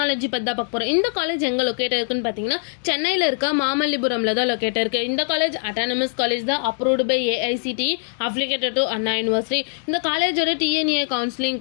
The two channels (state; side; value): silent; right; 64 dB below the other